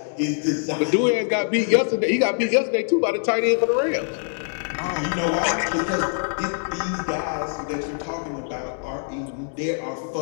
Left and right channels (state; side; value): silent; right; digital silence